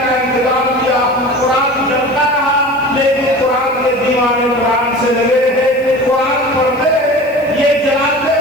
کا انتظام کیا. قرآن جلتا رہا لیکن قرآن کے دیوانے قرآن سے لگے رہے، قرآن پڑھتے رہے. یہ جلاتے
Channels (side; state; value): left; noise; hiss, 28 dB below the sound